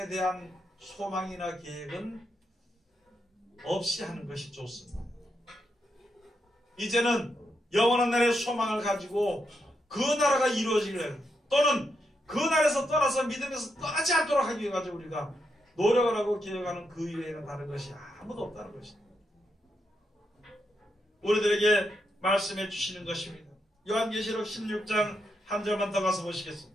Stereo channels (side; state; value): both; normal; correlation 0.82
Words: 대한 소망이나 계획은 없이 하는 것이 좋습니다. 이제는 영원한 나라의 소망을 가지고 그 나라가 이루어지기를, 또는 그 나라에서 떠나서 믿음에서 떠나지 않도록 하기 위해 가지고 우리가 노력을 하고 기억하는 그 이외에는 다른 것이 아무도 없다는 것입니다. 우리들에게 말씀해 주시는 것입니다. 요한계시록 16장 한 절만 더 가서